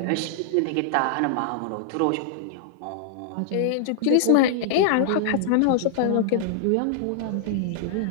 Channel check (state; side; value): different; both; correlation -0.01